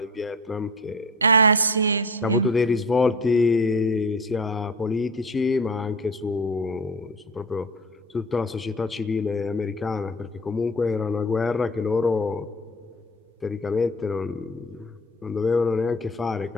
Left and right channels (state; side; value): normal; both; correlation 0.36